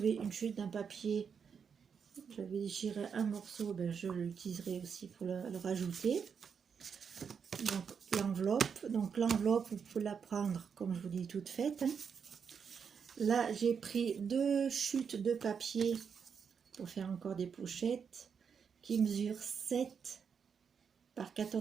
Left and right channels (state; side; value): quieter; left; 6.6 dB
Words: une chute d'un papier, j'avais déchiré un morceau, ben, je l'utiliserai aussi pour le rajouter. Donc l'enveloppe, vous pouvez la prendre, comme je vous dis, toute faite. Hein. Là, j'ai pris 2 chutes de papier pour faire encore des pochettes qui mesurent 7 par